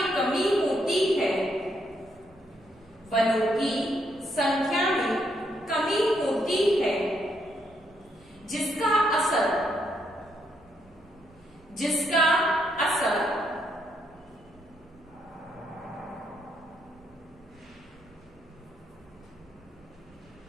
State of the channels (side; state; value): right; noise; rumble, 28 dB below the sound